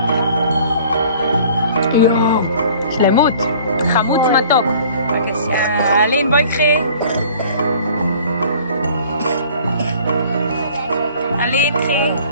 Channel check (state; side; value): inverted; both; correlation -0.50